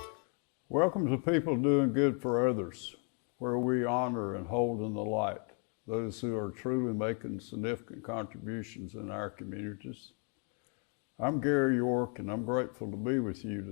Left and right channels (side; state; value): right; quieter; 39.9 dB